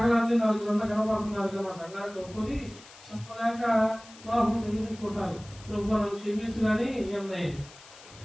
4 గంటలు కనబడుతున్నారు కదా, మా సంఘానికి ఒప్పుకొని చెప్పలేక లోపం తెలియకుంటారు. ప్రభు నన్ను క్షమించు కానీ ఏమన్నాయి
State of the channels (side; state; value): left; noise; hiss, 20 dB below the sound